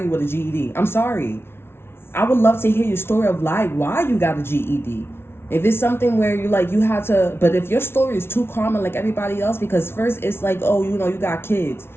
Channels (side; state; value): right; late; 0.12 ms